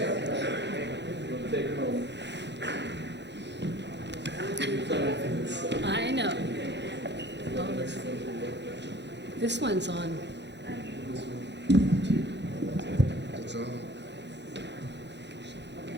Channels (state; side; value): late; left; 0.51 ms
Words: I know. This one's on.